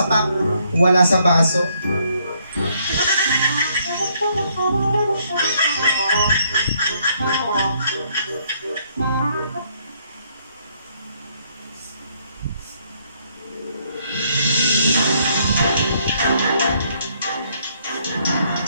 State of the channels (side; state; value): both; inverted; correlation -0.69